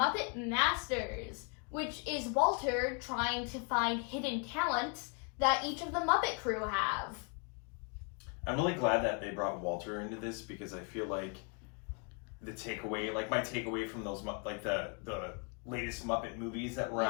Masters, which is Walter trying to find hidden talents that each of the Muppet crew have. I'm really glad that they brought Walter into this because I feel like my takeaway from those, the latest Muppet movies that were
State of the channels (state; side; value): quieter; right; 37.1 dB